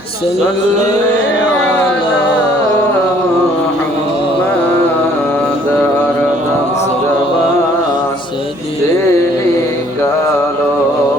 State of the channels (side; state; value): right; noise; hum, 27 dB below the sound